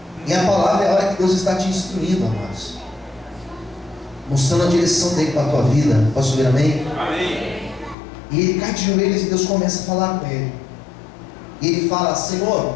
E a palavra é a hora que Deus está te instruindo, amados, mostrando a direção dele para a tua vida. Posso ouvir amém? Amém. E ele cai de joelhos e Deus começa a falar com ele. E ele fala:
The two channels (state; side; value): drops out; right; at 8.0 s